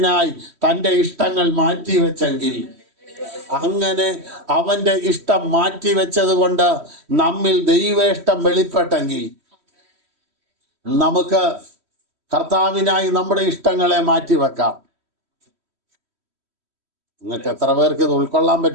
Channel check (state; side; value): late; left; 3.1 ms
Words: തൻ്റെ ഇഷ്ടങ്ങൾ മാറ്റിവെച്ചെങ്കിൽ, അങ്ങനെ അവൻ്റെ ഇഷ്ടം മാറ്റിവെച്ചത് കൊണ്ട് നമ്മിൽ ദൈവേഷ്ടം വെളിപ്പെട്ടെങ്കിൽ, നമുക്ക് കർത്താവിനായി നമ്മുടെ ഇഷ്ടങ്ങളെ മാറ്റിവെക്കാം. നിങ്ങൾക്ക് എത്ര പേർക്ക് ഇത് ഉൾക്കൊള്ളാൻ